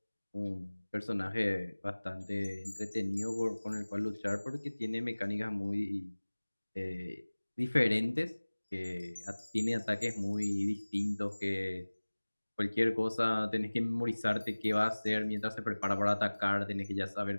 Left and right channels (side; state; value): both; inverted; correlation -1.00